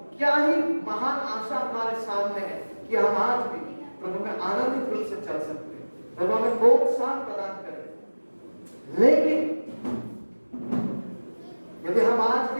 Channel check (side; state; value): both; inverted; correlation -1.00